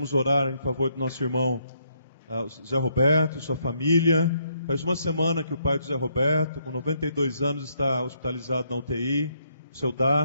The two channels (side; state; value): both; inverted; correlation -0.73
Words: orar em favor do nosso irmão Zé Roberto, sua família. Faz uma semana que o pai do Zé Roberto, com 92 anos, está hospitalizado na UTI, seu